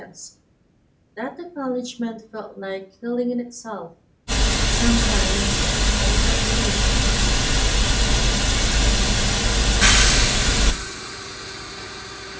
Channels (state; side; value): identical; both; correlation 1.00